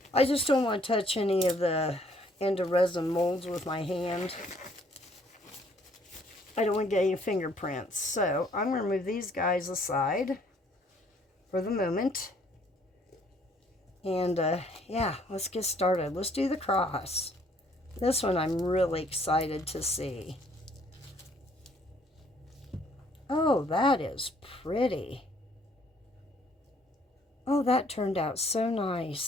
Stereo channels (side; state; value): both; normal; correlation 0.63